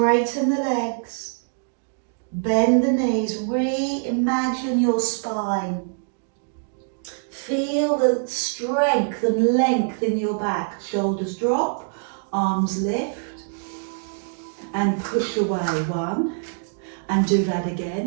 the legs. Bend the knees. Reimagine your spine. Feel the strength and length in your back. Shoulders drop. Arms lift. And push away. 1. And do that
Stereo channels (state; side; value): silent; left; digital silence